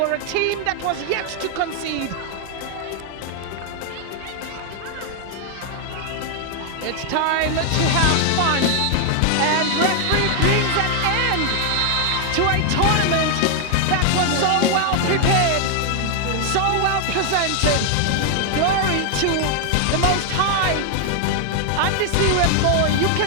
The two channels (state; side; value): different; both; correlation 0.00